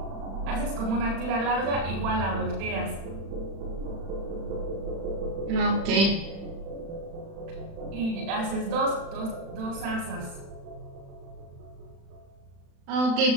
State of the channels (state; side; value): late; left; 36 ms